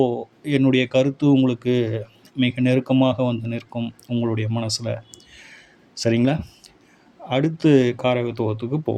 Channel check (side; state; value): both; identical; correlation 1.00